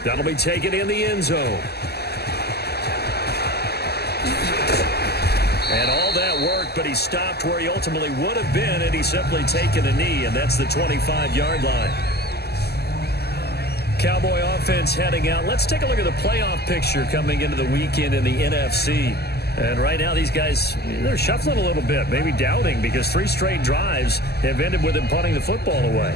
That'll be taken in the end zone. And all that worked, but he stopped where he ultimately would have been, and he's simply taken a knee, and that's the 25-yard line. Cowboy offense heading out. Let's take a look at the playoff picture coming into the weekend in the NFC. And right now, these guys, they're shuffling a little bit, maybe doubting, because 3 straight drives have ended with them punting the football away.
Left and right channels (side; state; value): right; late; 0.47 ms